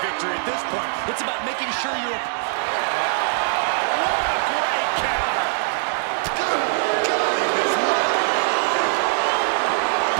victory at this point. It's about making sure you're... What a great counter.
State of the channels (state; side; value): silent; left; digital silence